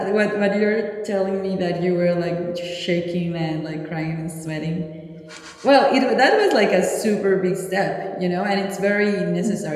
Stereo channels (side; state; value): both; identical; correlation 1.00